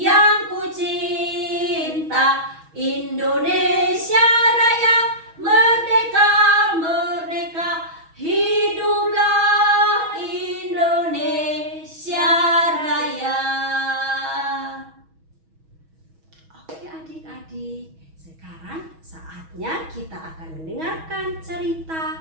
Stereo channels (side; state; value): left; late; 6.2 ms